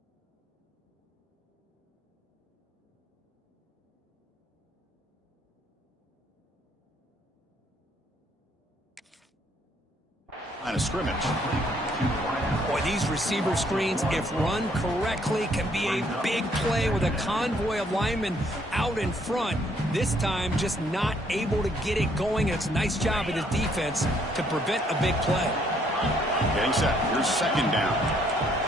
Line of scrimmage. Boy, these receiver screens, if run correctly, can be a big play with a convoy of linemen out in front. This time, just not able to get it going. It's a nice job of the defense to prevent a big play. Getting set. Here's 2nd down.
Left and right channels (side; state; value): both; normal; correlation 0.67